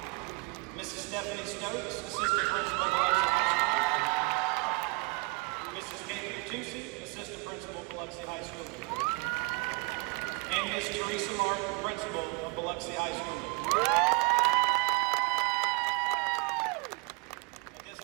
Mrs. Stephanie Stokes, Assistant Principal of Biloxi High School, Mrs. Kate Tucci, Assistant Principal of Biloxi High School, and Ms. Teresa Martin, Principal of Biloxi High School. At this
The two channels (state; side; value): quieter; left; 29.1 dB